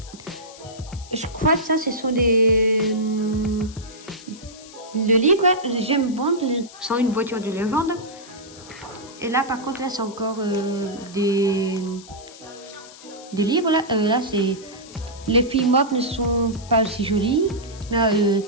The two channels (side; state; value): left; noise; hiss, 19 dB below the sound